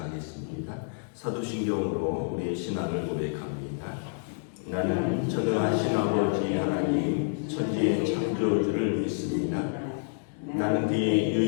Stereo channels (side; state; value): right; silent; digital silence